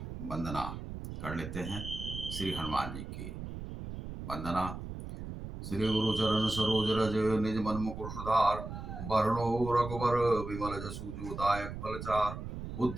वंदना कर लेते हैं। श्री हनुमान जी की वंदना। श्री गुरु चरण सरोज रज निज मन मुकुर सुधार, वरणो रघुबर विमल जसु जो दायक फलचार।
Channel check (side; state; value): right; noise; rumble, 8 dB below the sound